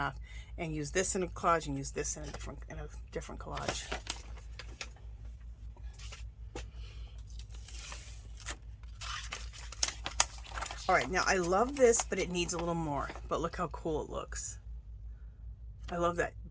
and use this in a collage and use this in a different collage. All right, now I love this, but it needs a little more. But look how cool it looks. I love that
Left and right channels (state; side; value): identical; both; correlation 1.00